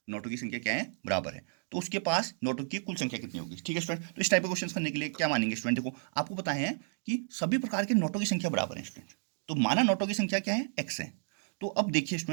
नोटों की संख्या क्या है, बराबर है, तो उसके पास नोटों की कुल संख्या कितनी होगी, ठीक है स्टूडेंट। तो इस टाइप के क्वेश्चन करने के लिए क्या मानेंगे स्टूडेंट, देखो आपको पता है कि सभी प्रकार के नोटों की संख्या बराबर है स्टूडेंट, तो माना नोटों की संख्या क्या है x है। तो अब देखिए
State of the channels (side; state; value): left; silent; digital silence